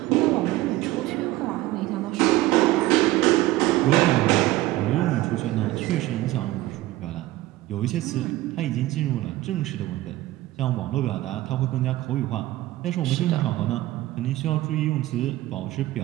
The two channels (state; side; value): quieter; left; 16.8 dB